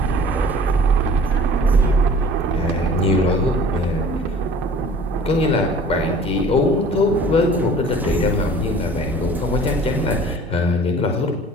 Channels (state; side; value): normal; both; correlation 0.47